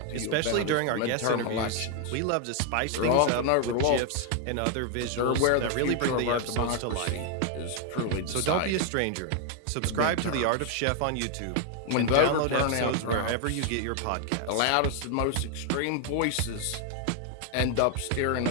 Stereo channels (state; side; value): different; both; correlation 0.00